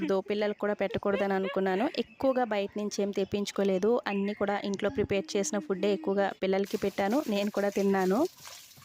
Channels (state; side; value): identical; both; correlation 1.00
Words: పిల్లలకు కూడా పెట్టకూడదు అని అనుకున్నాను. ఎక్కువగా బయట నుంచి ఏం తెప్పించుకోలేదు. అన్నీ కూడా ఇంట్లో ప్రిపేర్ చేసిన ఫుడ్డే ఎక్కువగా పిల్లలకి పెట్టాను, నేను కూడా తిన్నాను.